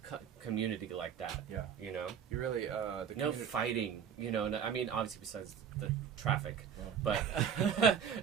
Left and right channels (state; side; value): quieter; left; 7.9 dB